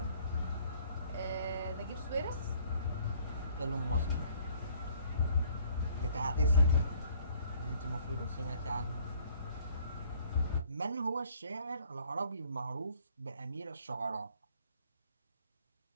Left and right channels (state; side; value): inverted; both; correlation -0.59